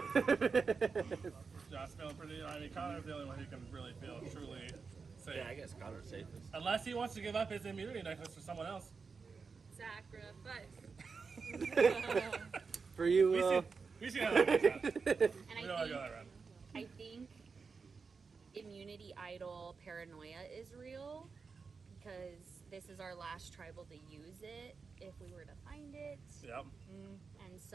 Josh feeling pretty. I mean, Connor's the only one who can really feel truly safe. Yeah, I guess Connor's safest. Unless he wants to give up his immunity necklace for someone else. Sacrifice. For you, We see how that works out. And We don't want to go that round. I think immunity idol paranoia is real because this is our last tribal to use it if we were to find it. Yep. And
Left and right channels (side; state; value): left; quieter; 5.0 dB